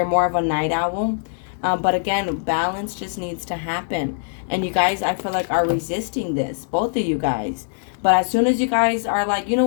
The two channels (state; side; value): silent; right; 63 dB below the other